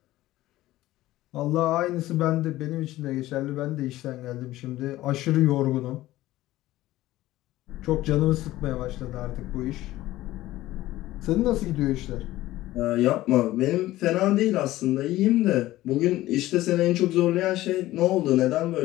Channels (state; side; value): quieter; right; 16.1 dB